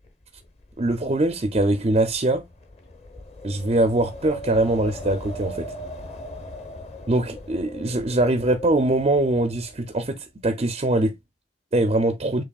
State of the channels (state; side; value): normal; both; correlation 0.52